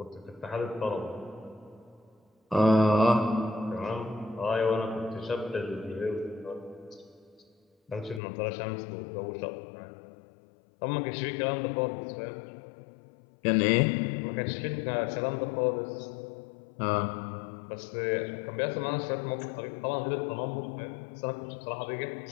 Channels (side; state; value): right; drops out; at 8.2 s